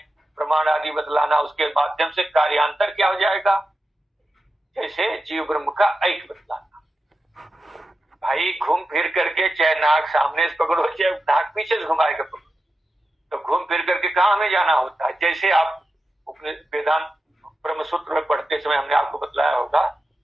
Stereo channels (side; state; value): both; normal; correlation 0.90